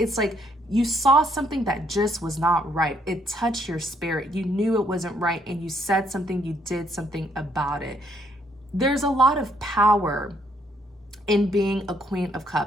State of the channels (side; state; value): both; normal; correlation 0.69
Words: like you saw something that just was not right. It touched your spirit. You knew it wasn't right, and you said something, you did something about it. There's a lot of power in being a Queen of